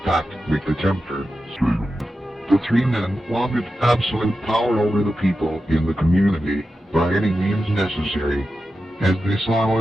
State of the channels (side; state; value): both; normal; correlation 0.91